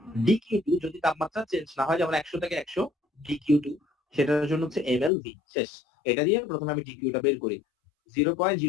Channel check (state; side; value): drops out; right; at 5.1 s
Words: ডিকিউ2 যদি তাপমাত্রা চেঞ্জ না হয়, যেমন 100 থেকে 100 ডিকিউ2, সেটার জন্য হচ্ছে এমএলভি। শেষ। এটা দিয়ে প্রথমে আমি ডিকিউটা বের করি